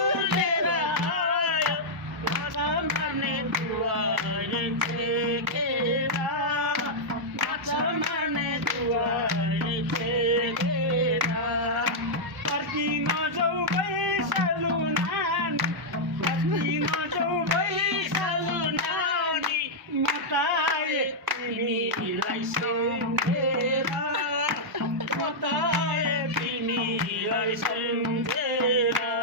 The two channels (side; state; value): both; normal; correlation -0.06